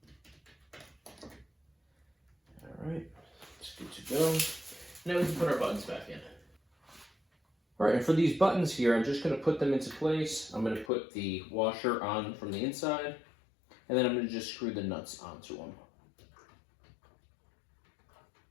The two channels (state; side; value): drops out; right; at 10.9 s